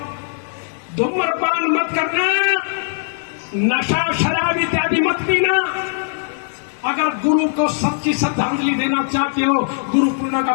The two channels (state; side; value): silent; right; 65 dB below the other